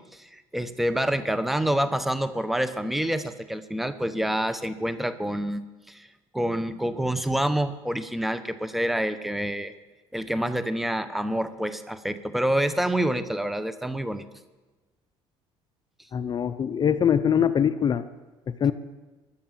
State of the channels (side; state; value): both; normal; correlation 0.84